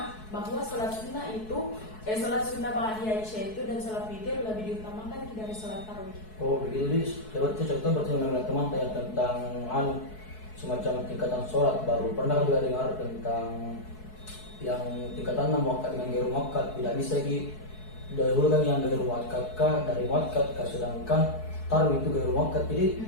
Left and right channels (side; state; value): right; late; 4.6 ms